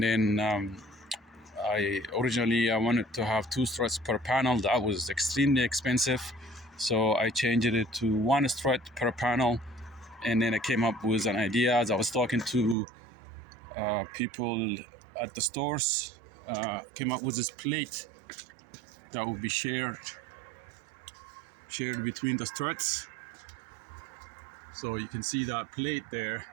I wanted to have 2 struts per panel. That was extremely expensive, so I changed it to 1 strut per panel. And then I came up with an idea as I was talking to people at the stores. Came up with this plate that would be shared between the struts. So you can see that plate there.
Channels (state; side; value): drops out; left; at 12.8 s